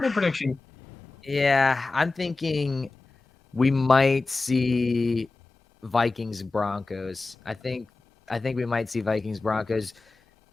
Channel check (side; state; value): right; quieter; 3.6 dB